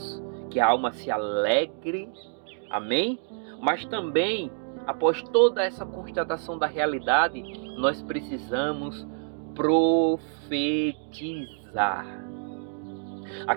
que a alma se alegre, Amém? Mas também, após toda essa constatação da realidade, nós precisamos profetizar.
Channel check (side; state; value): left; silent; 60 dB below the other